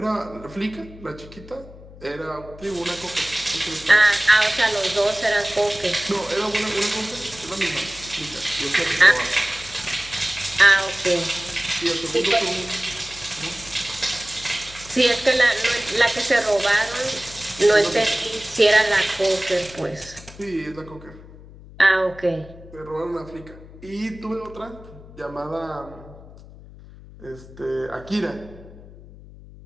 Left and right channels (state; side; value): noise; left; hum, 19 dB below the sound